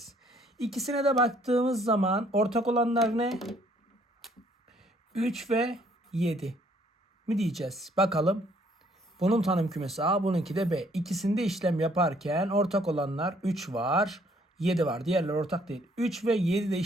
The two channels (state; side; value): normal; both; correlation 0.64